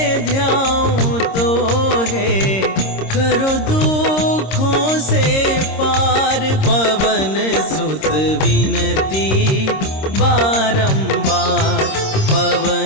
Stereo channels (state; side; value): late; right; 26 ms